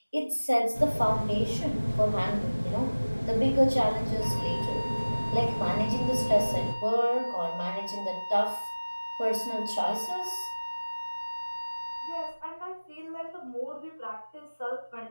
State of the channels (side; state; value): both; inverted; correlation -1.00